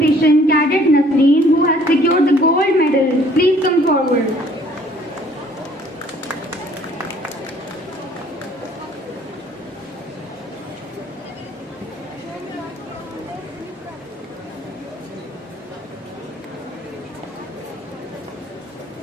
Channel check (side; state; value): both; normal; correlation 0.58